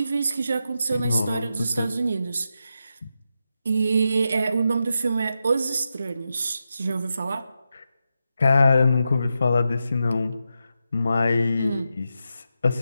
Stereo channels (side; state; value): both; inverted; correlation -0.87